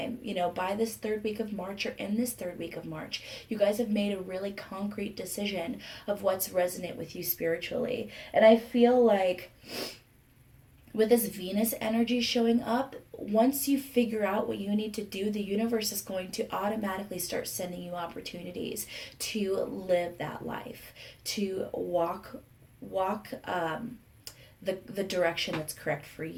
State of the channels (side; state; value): both; identical; correlation 1.00